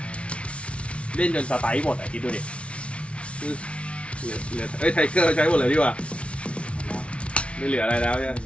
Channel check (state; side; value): late; right; 0.061 ms